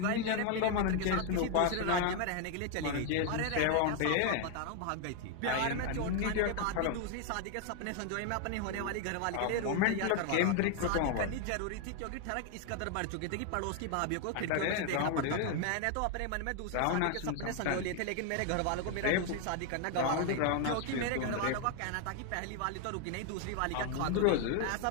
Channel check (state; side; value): different; both; correlation 0.01